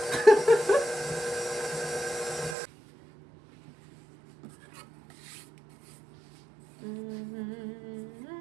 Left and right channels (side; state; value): left; drops out; at 2.6 s